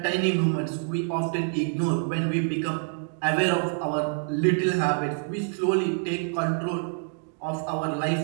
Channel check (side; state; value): left; silent; 60 dB below the other